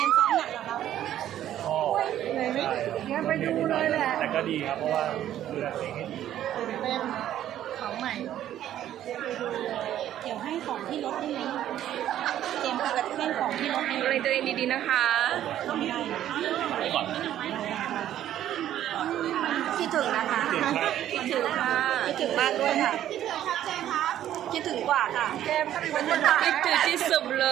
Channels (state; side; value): quieter; left; 11.8 dB